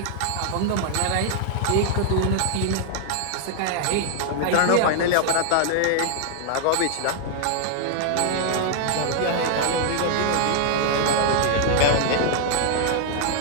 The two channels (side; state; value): both; different; correlation 0.00